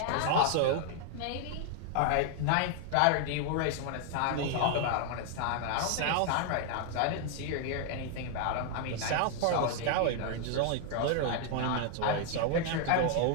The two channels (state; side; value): different; both; correlation 0.00